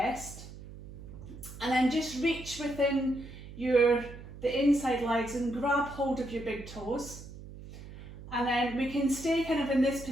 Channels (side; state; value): right; noise; hum, 14 dB below the sound